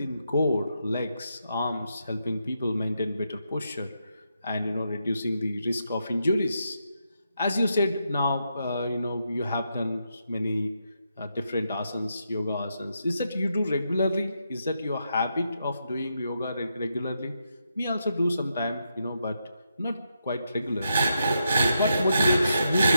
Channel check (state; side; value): inverted; both; correlation -0.83